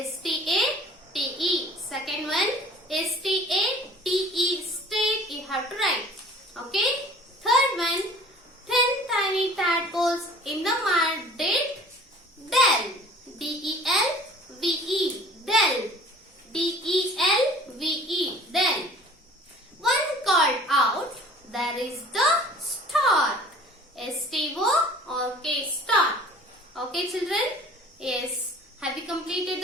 Second one, S-T-A-T-E, state, you have to write. Okay. Third one, 10 tiny tadpoles in the mud did del. D-E-L-V-E, del. D-E-L-V-E, del. One called out, there is the star. S-T-O-R-K, star. Okay, children? Yes. Have you completed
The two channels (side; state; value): both; normal; correlation 0.48